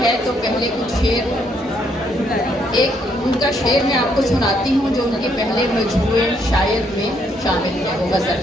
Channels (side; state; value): both; normal; correlation 0.72